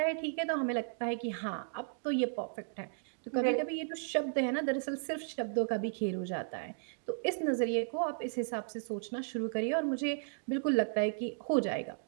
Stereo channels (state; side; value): silent; left; digital silence